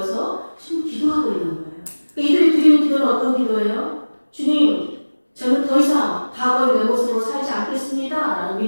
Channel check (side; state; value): both; inverted; correlation -1.00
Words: 지금 기도하고 있는 거예요. 그러니까 이들이 드리는 기도는 어떤 기도예요? 주님, 저는 더 이상 과거의 내 모습으로 살지 않겠습니다. 라는